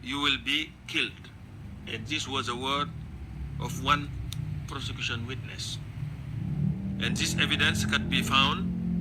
you will be killed. And this was a word of one prosecution witness. And this evidence can be found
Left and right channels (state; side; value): identical; both; correlation 1.00